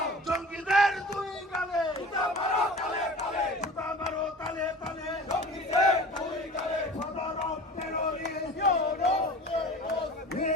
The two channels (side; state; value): both; normal; correlation 0.40